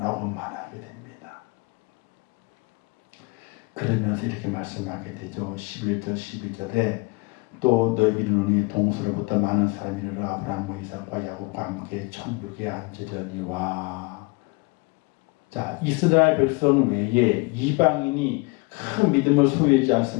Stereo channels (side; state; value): right; quieter; 26.5 dB